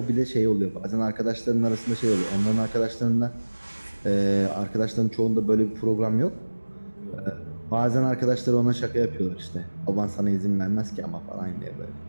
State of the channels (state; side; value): inverted; both; correlation -1.00